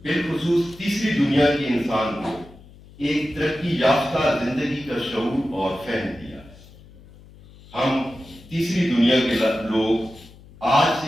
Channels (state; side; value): noise; left; hum, 22 dB below the sound